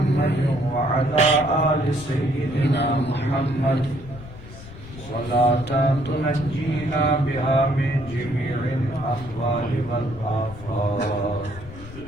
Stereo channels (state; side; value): noise; left; rumble, 15 dB below the sound